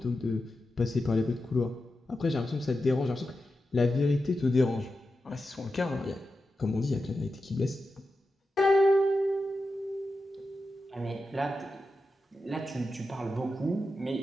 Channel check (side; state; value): both; normal; correlation 0.90